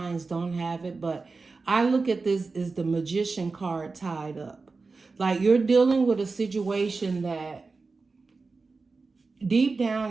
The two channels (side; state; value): left; quieter; 4.1 dB